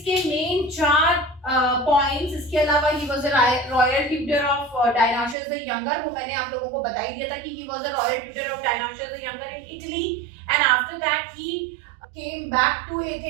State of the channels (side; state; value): left; drops out; at 5.4 s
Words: main चार points. इसके अलावा he was royal tutor of Dionysius the younger. वो मैंने आप लोगों को बता ही दिया था कि he was a royal tutor of Dionysius the younger in Italy, and after that he came back to